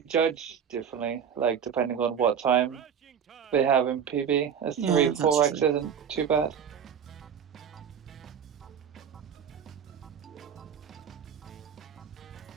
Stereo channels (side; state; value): left; quieter; 7.8 dB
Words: judge differently, like depending on what time they have in PB. A 3-4x isn't too bad.